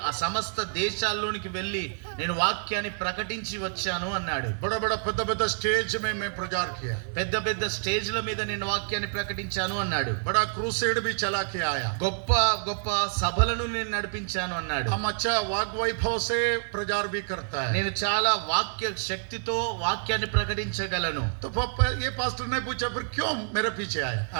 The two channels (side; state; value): left; silent; 56 dB below the other